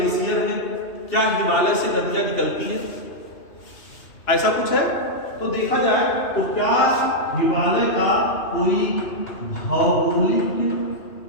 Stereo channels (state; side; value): late; right; 2.8 ms